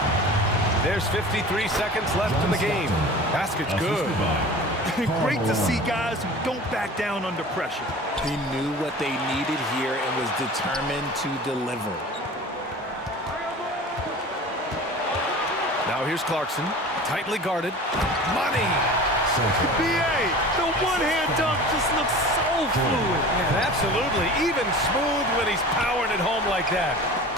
There's 53 seconds left in the game. Basket's good. Great to see guys who don't back down under pressure. He knew what they needed here and was determined to deliver. Now here's Clarkson, tightly guarded. Money! BA, the one-hand dunk just looks so fluid. Yeah, absolutely. Even smooth when he's powering it home like that.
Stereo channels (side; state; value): both; normal; correlation 0.39